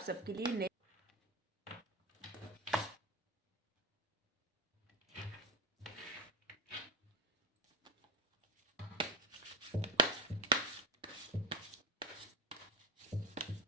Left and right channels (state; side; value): normal; both; correlation 0.18